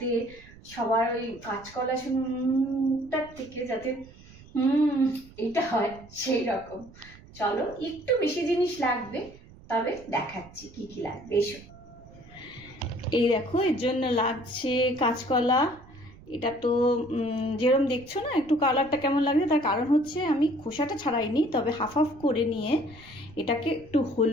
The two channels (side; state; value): right; noise; rumble, 21 dB below the sound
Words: সবার ওই কাঁচকলা মুখটার থেকে যাতে এটা হয় সেই রকম। চলো, একটু বেশি জিনিস লাগবে, তবে দেখাচ্ছি কি কি লাগবে। এসো, এই দেখো, এর জন্য লাগছে কাঁচকলা। এটা তো যেরকম দেখছো না, একটু কালারটা কেমন লাগছে, তার কারণ হচ্ছে আমি খোসাটা ছাড়াইনি, তবে হাফ হাফ করে নিয়ে এটাকে একটু